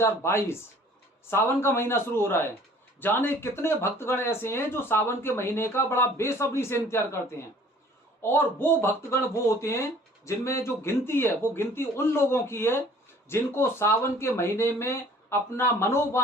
सावन का महीना शुरू हो रहा है। जाने कितने भक्तगण ऐसे हैं जो सावन के महीने का बड़ा बेसब्री से इंतजार करते हैं। और वो भक्तगण वो होते हैं जिनमें जो गिनती है वो गिनती उन लोगों की है जिनको सावन के महीने में अपना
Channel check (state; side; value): normal; both; correlation 0.53